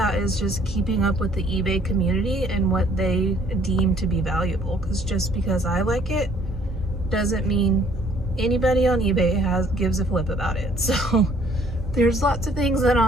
is just keeping up with the eBay community and what they deem to be valuable, because just because I like it doesn't mean anybody on eBay gives a flip about it. So there's lots of things that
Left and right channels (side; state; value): both; normal; correlation 0.61